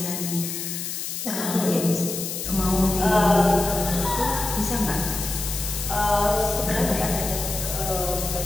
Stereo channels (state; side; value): noise; left; hiss, 5 dB below the sound